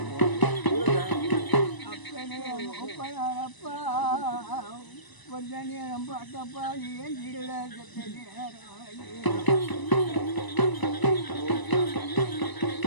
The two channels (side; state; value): right; late; 1.0 ms